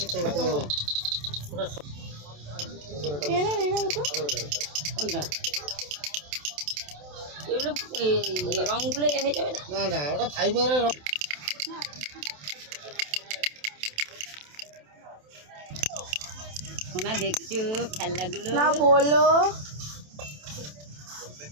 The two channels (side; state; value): left; late; 27 ms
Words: এই না ওটা কোনটা? এগুলো রঙগুলো হয়ে যাবে না? না না, ওটা ফাইবারের। সোনা দেখছো খেলনাগুলো? না বলো।